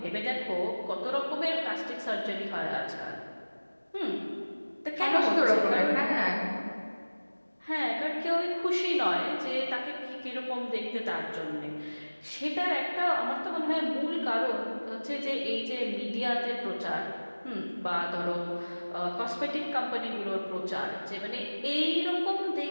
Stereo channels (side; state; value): both; inverted; correlation -1.00